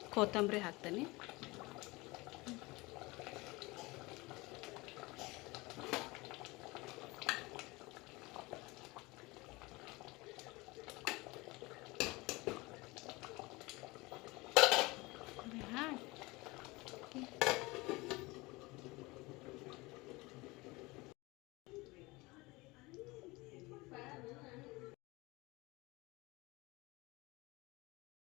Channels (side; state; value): right; quieter; 23.1 dB